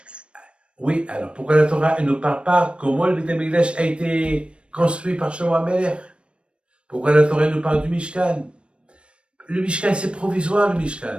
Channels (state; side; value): late; left; 0.058 ms